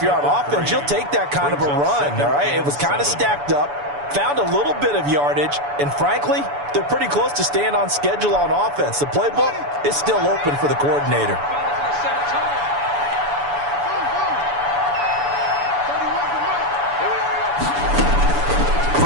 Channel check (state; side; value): late; left; 7.0 ms